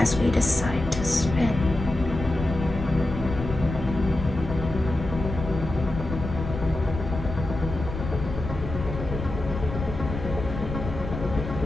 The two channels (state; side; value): noise; left; rumble, 7 dB below the sound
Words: as we decide to spin.